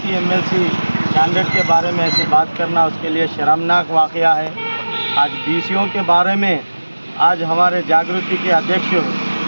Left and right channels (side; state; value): both; inverted; correlation -1.00